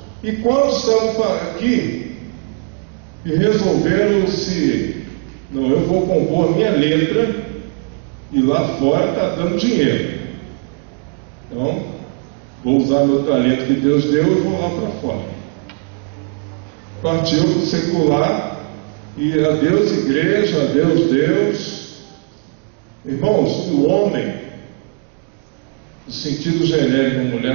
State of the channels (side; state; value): left; quieter; 38.0 dB